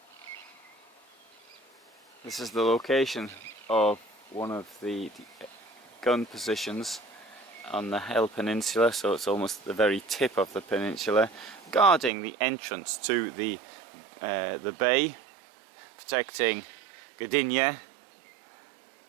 This is the location of one of the gun positions on the Hel Peninsula, so it's almost the very tip of the peninsula, guarding the entrance to the bay, protecting Gdynia.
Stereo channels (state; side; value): drops out; left; at 12.1 s